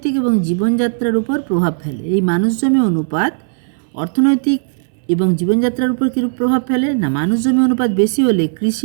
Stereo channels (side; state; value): left; silent; 63 dB below the other